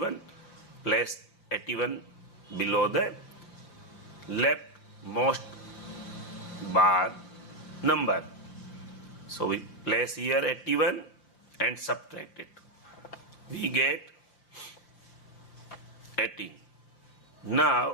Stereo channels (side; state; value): right; late; 5.8 ms